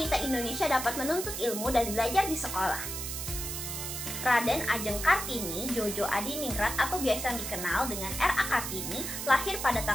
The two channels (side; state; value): right; noise; hiss, 5 dB below the sound